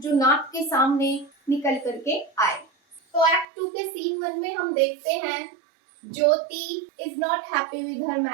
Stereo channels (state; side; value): drops out; left; at 3.5 s